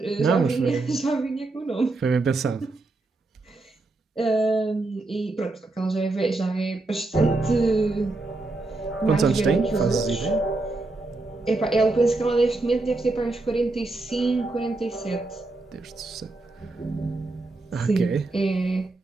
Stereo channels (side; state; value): left; quieter; 3.2 dB